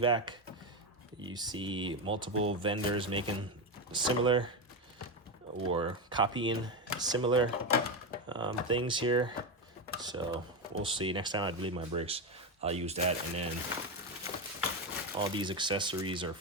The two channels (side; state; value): both; normal; correlation 0.12